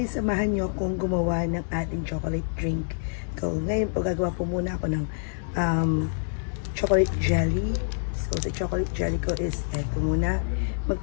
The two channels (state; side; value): silent; right; digital silence